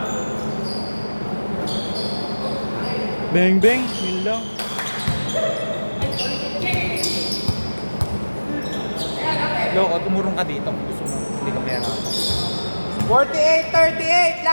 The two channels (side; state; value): both; inverted; correlation -1.00